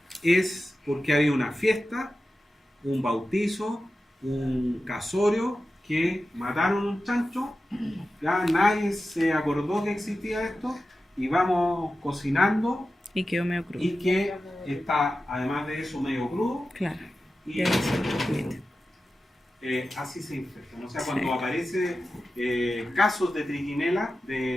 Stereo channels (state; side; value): normal; both; correlation 0.93